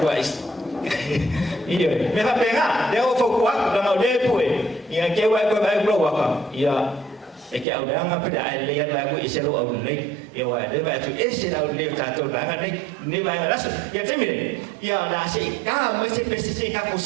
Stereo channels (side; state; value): left; drops out; at 7.7 s